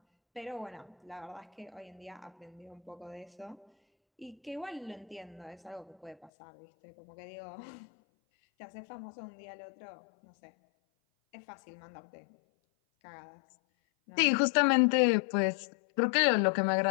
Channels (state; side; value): drops out; right; at 6.3 s